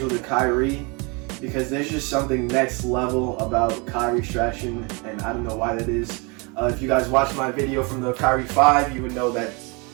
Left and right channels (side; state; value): left; quieter; 30.1 dB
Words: with the Kyrie, because there's just something next level about Kyrie's traction, and I don't know why that is. If you guys watched my video from the Kyrie 5, you would know that